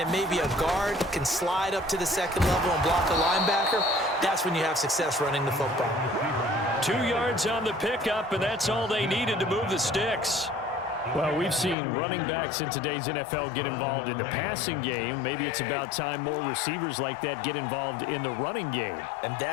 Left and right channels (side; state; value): right; drops out; at 11.8 s